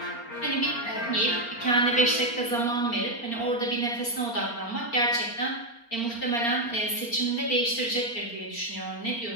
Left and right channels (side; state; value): right; late; 4.3 ms